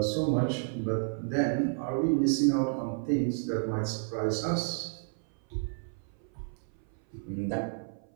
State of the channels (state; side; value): silent; left; 57 dB below the other